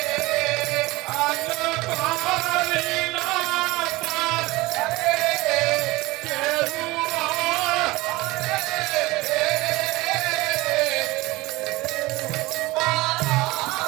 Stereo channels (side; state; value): left; quieter; 21.0 dB